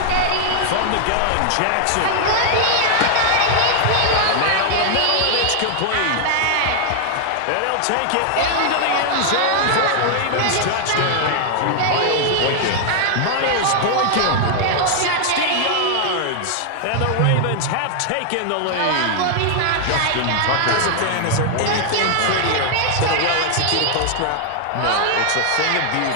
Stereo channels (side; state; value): both; different; correlation 0.00